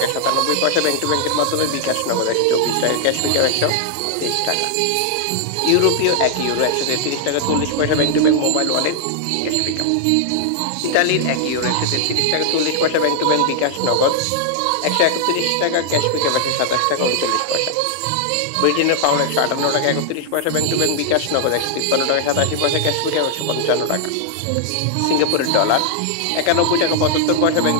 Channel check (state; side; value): different; both; correlation -0.01